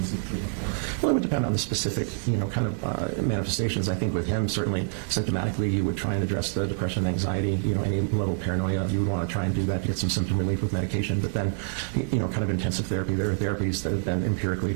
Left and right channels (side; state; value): left; silent; digital silence